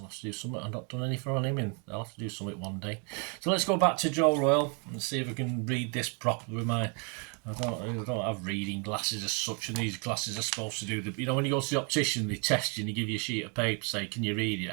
have to do something. I've not done anything on him, and I'll have to do something one day. So let's go back to Joe Royle and see if I can read this properly with my... I don't have reading glasses as such, and these glasses are supposed to do the... when you go to the optician, they test you and they give you a sheet of paper, say, can you read it?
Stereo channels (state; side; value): quieter; left; 35.3 dB